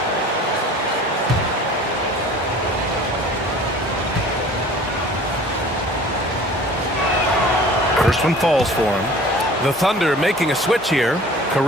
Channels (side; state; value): both; normal; correlation 0.46